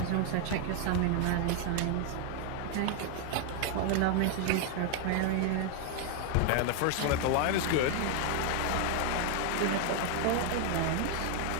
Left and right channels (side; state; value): both; different; correlation 0.00